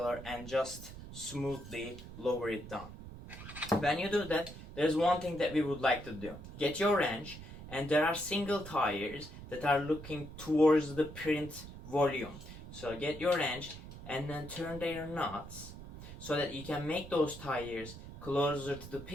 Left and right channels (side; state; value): right; noise; rumble, 13 dB below the sound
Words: and just smoothly lower it down. When you do that, there's one thing that we would like to do. Get your wrench, and there are single tires that are looking towards the print volume. So get your wrench and then turn their nuts so that you can make those tires closer to the